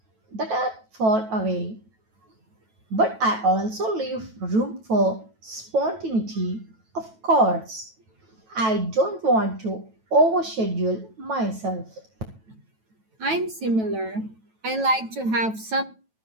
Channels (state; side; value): late; left; 9.1 ms